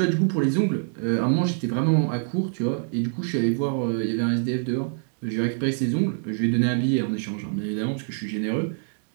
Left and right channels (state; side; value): silent; left; digital silence